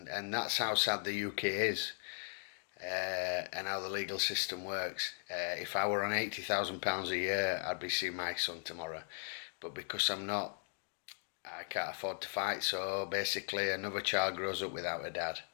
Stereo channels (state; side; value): silent; right; digital silence